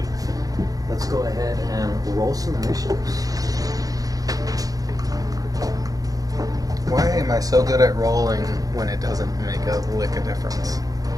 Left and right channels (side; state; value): left; late; 0.17 ms